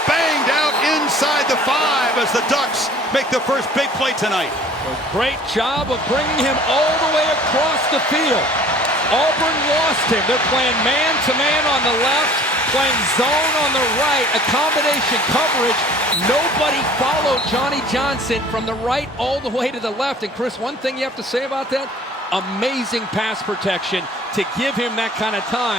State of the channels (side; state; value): both; normal; correlation 0.50